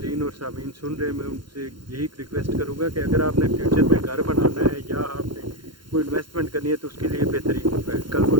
और सामीन सुन रहे हैं, मैं उनसे यही रिक्वेस्ट करूँगा कि अगर आपने फ्यूचर में घर बनाना है या आपने कोई इन्वेस्टमेंट करनी है तो उसके लिए बेहतरीन होगा। कल को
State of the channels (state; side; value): late; left; 0.72 ms